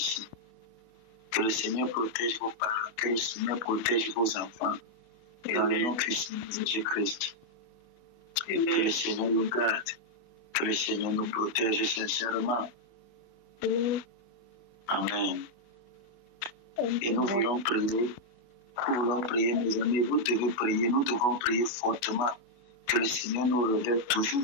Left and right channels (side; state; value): right; late; 25 ms